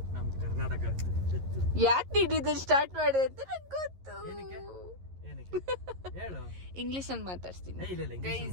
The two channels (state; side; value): late; left; 11 ms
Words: ನಮ್ ಕರ್ನಾಟಕ. ಯಾಕೆ ನೀಡಿದ್ದು ಸ್ಟಾರ್ಟ್ ಮಾಡಿದೆ ಅಂತ ನಂಗೆ ಗೊತ್ತು. ಇಂಗ್ಲಿಷ್ ಅಲ್ಲಿ ಮಾತಾಡ್ತೀನಿ